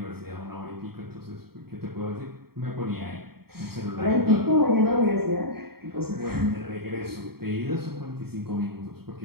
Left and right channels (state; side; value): late; left; 0.95 ms